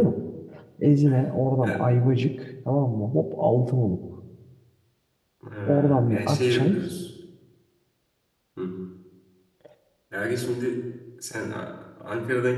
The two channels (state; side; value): identical; both; correlation 1.00